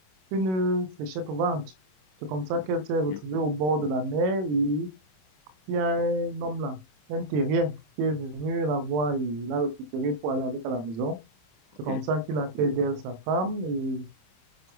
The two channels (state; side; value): late; left; 27 ms